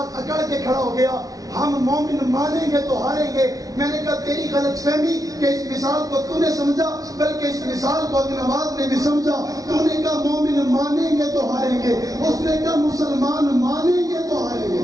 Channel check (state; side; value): late; left; 0.18 ms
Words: اکڑ کے کھڑا ہو گیا. ہم مومن مانیں گے تو ہاریں گے. میں نے کہا تیری غلط فہمی کہ اس مثال کو تو نے سمجھا، بلکہ اس مثال کو ابن نواز نے بھی سمجھا. تو نے کہا مومن مانیں گے تو ہاریں گے، اس نے کہا مسلمان مانیں گے تو ہاریں گے.